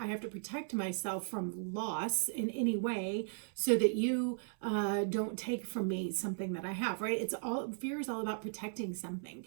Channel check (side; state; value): left; silent; 53 dB below the other